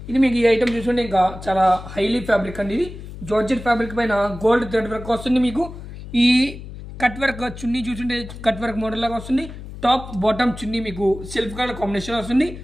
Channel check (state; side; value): noise; left; hum, 12 dB below the sound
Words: ఇది మీకు ఈ ఐటమ్ చూసుకుంటే ఇంకా చాలా హైలీ ఫ్యాబ్రిక్ అండి. ఇది జార్జెట్ ఫ్యాబ్రిక్ పైన గోల్డ్ థ్రెడ్ వర్క్ వస్తుంది. మీకు ఈ కట్ వర్క్ చున్నీ చూసుంటే కట్ వర్క్ మోడల్ లాగా వస్తుంది. టాప్ బాటమ్ చున్నీ మీకు సెల్ఫ్ కలర్ కాంబినేషన్ వస్తుంది.